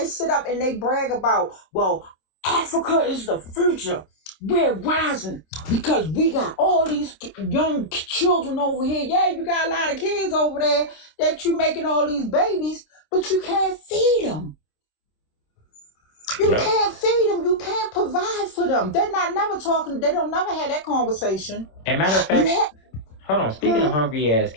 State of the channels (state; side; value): late; right; 26 ms